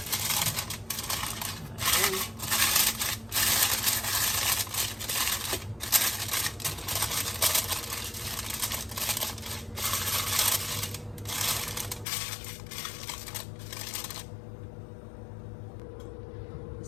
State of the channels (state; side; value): drops out; right; at 12.1 s